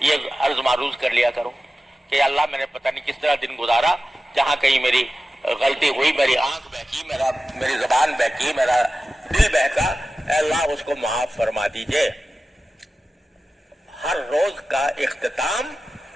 یہ عرض معروض کر لیا کرو کہ اللہ میں نے پتہ نہیں کس طرح دن گزارا، جہاں کہیں میری غلطی ہوئی، میری آنکھ بہکی، میری زبان بہکی، میرا دل بہکا، اے اللہ اس کو معاف فرما دیجئے۔ ہر روز کا اختتام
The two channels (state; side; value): normal; both; correlation 0.94